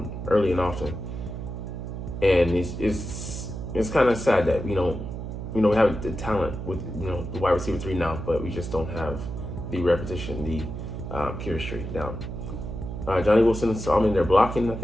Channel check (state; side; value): noise; right; hum, 7 dB below the sound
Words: early and often. And it's kind of sad that we don't we have the talent with, the wide receiver 3 now, but we just don't have the repetition, the chemistry down. Johnny Wilson saw him in there blocking, I